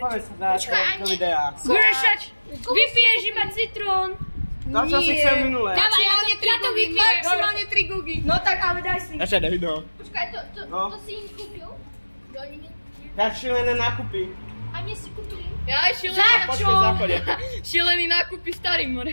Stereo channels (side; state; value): both; inverted; correlation -1.00